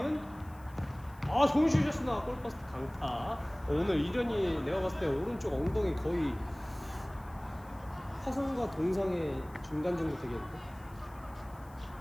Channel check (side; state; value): left; noise; hiss, 27 dB below the sound